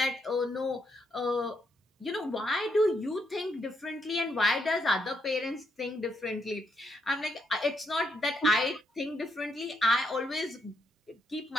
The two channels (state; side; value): normal; both; correlation 0.77